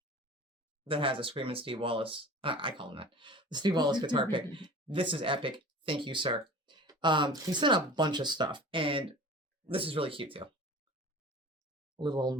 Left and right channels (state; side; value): normal; both; correlation 0.39